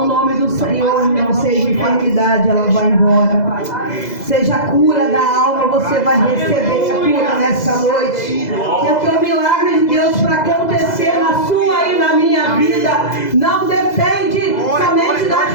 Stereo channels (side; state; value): right; late; 2.0 ms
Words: nome do Senhor, não seja enfermidade, ela vai embora. Seja a cura da alma, você vai receber a cura nessa noite. Porque o milagre de Deus para acontecer na sua e na minha vida não depende somente das